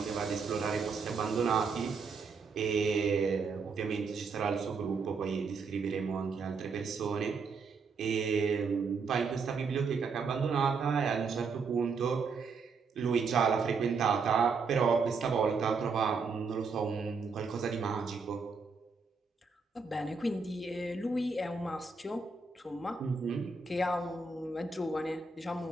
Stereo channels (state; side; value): quieter; left; 4.8 dB